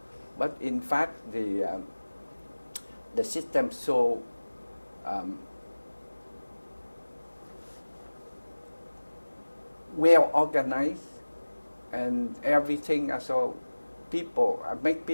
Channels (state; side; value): inverted; both; correlation -1.00